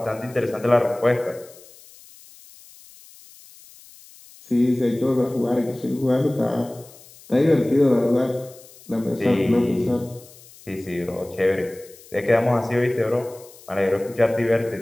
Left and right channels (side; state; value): left; noise; hiss, 23 dB below the sound